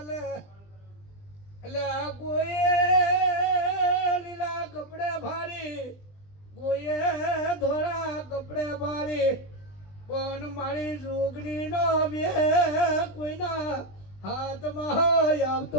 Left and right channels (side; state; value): right; late; 20 ms